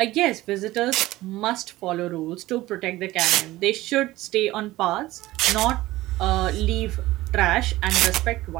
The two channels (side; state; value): left; quieter; 17.4 dB